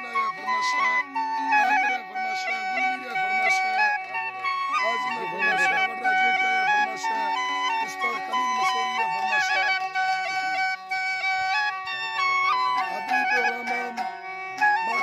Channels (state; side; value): identical; both; correlation 1.00